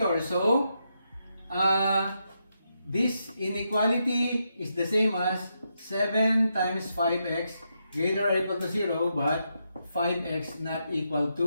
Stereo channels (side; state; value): both; inverted; correlation -0.82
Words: So, this inequality is the same as 7 times 5x greater or equal to 0, but 5x not equal